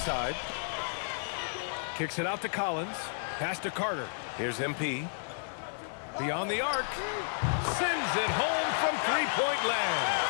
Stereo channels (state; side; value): silent; right; digital silence